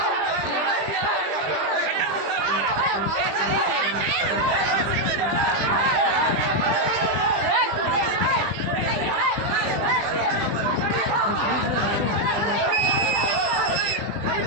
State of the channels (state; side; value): late; left; 20 ms